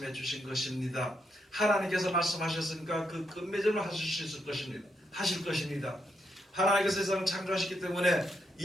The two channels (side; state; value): both; normal; correlation 0.80